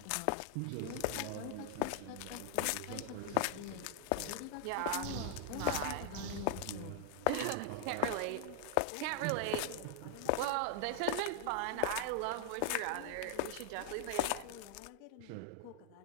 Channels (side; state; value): both; different; correlation -0.01